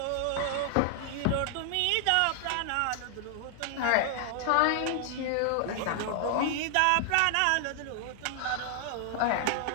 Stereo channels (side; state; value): both; different; correlation 0.00